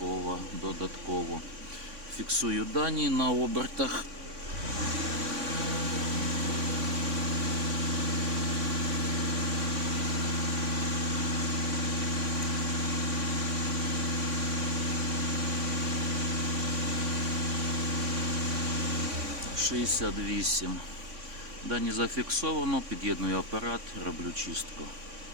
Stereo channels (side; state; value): left; late; 3.5 ms